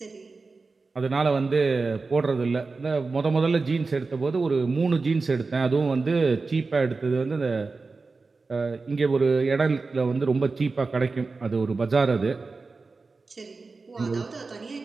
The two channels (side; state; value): left; quieter; 4.0 dB